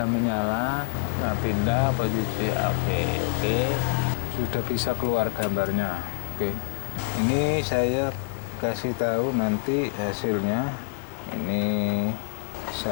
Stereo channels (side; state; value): right; silent; digital silence